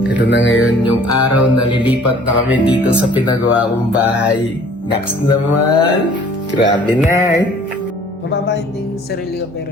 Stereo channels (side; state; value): both; normal; correlation 0.53